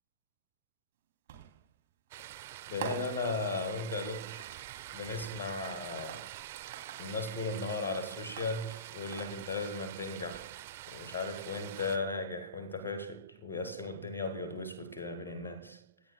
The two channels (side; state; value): both; inverted; correlation -0.32